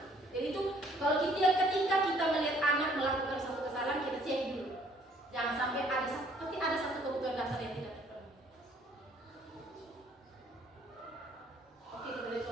sampai pasti ada satu kebutuhan dasar yang tidak terpenuhi. Oke, kita beri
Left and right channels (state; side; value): normal; both; correlation 0.61